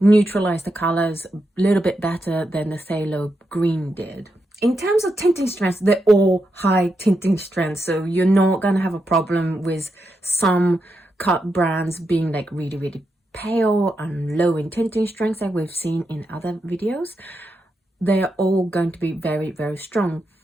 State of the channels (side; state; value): both; normal; correlation 0.85